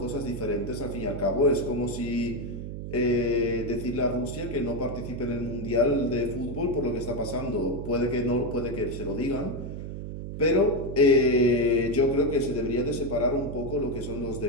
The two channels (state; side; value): noise; right; hum, 7 dB below the sound